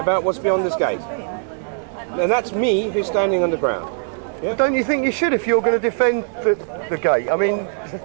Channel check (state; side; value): silent; left; digital silence